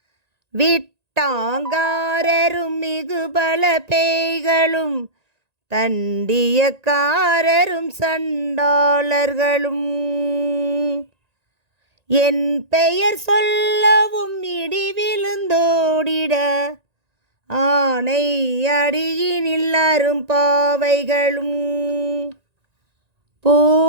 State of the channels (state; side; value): late; left; 1.9 ms